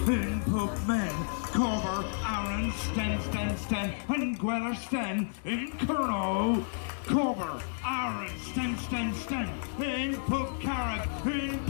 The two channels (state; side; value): silent; right; digital silence